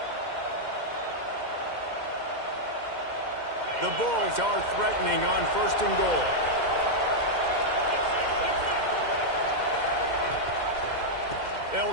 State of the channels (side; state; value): left; late; 2.1 ms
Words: The Bulls are threatening on 1st and goal. They'll